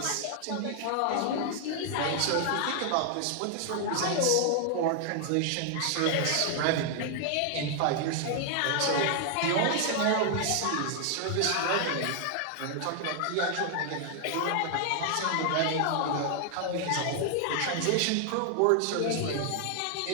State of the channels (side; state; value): both; different; correlation 0.00